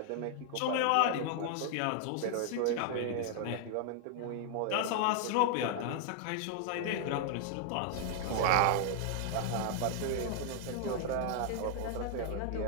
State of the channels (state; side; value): different; both; correlation 0.00